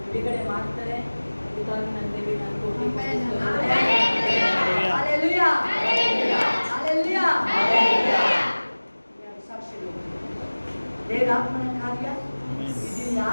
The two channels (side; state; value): both; inverted; correlation -1.00